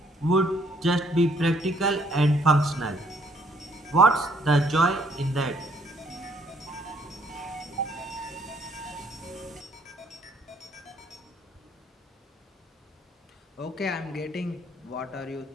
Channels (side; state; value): both; normal; correlation 0.65